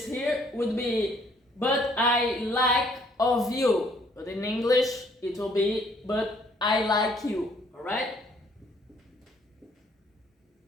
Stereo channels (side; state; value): both; normal; correlation 0.64